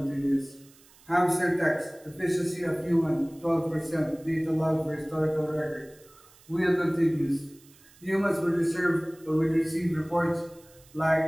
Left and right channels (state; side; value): noise; right; hiss, 26 dB below the sound